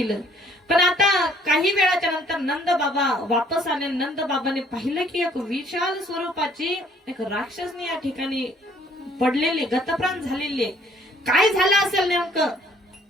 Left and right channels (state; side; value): normal; both; correlation 0.61